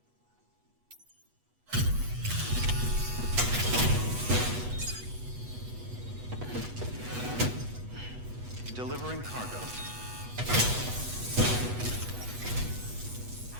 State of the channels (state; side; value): late; left; 8.2 ms